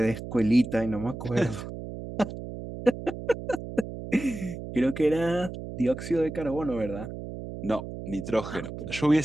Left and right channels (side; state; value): right; noise; hum, 9 dB below the sound